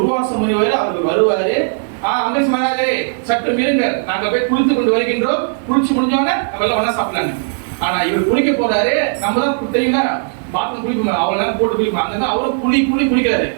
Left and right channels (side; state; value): left; silent; digital silence